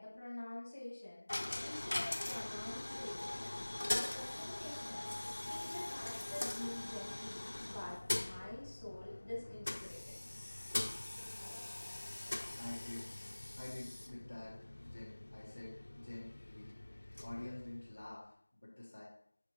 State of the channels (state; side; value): inverted; both; correlation -1.00